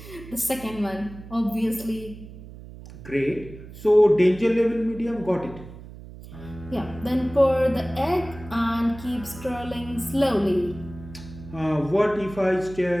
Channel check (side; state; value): right; noise; hum, 15 dB below the sound